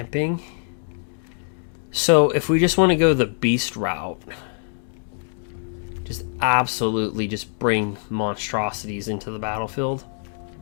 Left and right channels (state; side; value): silent; right; digital silence